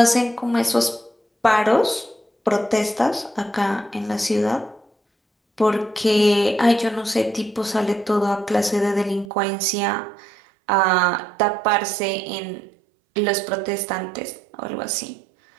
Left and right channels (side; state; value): left; drops out; at 9.3 s